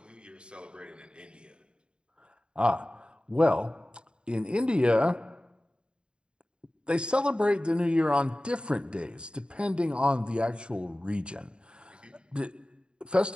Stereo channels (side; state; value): left; late; 0.052 ms